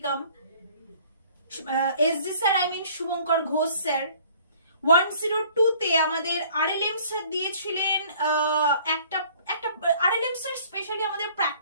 SG sir Shubhankar Ghosh sir. 102তে আমাদের আরএলএম স্যার দিয়েছিলেন একটা আরএলএম স্যার স্পেশালি আমাদের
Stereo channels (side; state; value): both; inverted; correlation -0.55